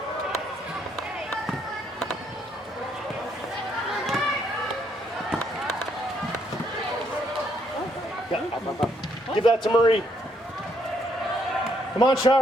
Give that to Marie. Come on,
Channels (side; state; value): both; normal; correlation 0.72